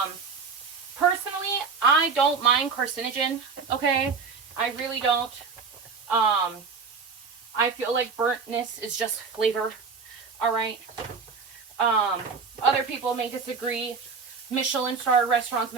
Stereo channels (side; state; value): left; quieter; 5.2 dB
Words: Personally, I don't mind carcinogen, okay? I really don't. I feel like burntness is just flavor, all right? Other people may disagree. Michelin-star restaurants